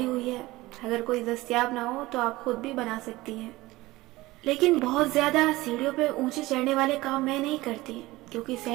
हुई है, अगर कोई दस्तयाब ना हो तो आप खुद भी बना सकती हैं। लेकिन बहुत ज्यादा सीढ़ियों पे ऊंचे चढ़ने वाले काम मैं नहीं करती, क्योंकि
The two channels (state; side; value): quieter; left; 19.3 dB